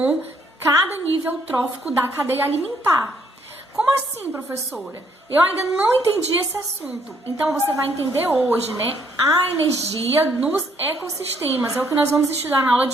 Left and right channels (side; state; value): both; normal; correlation 0.69